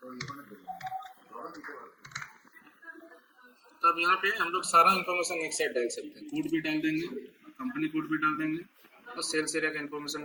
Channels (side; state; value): both; identical; correlation 1.00